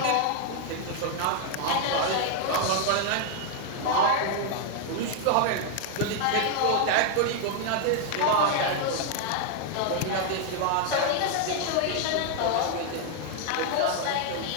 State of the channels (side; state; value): both; different; correlation 0.00